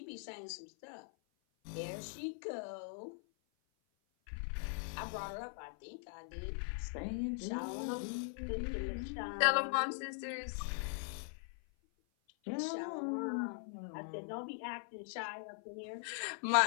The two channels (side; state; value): right; silent; 51 dB below the other